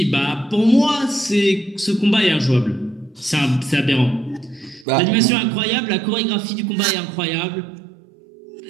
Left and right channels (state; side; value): drops out; left; at 4.9 s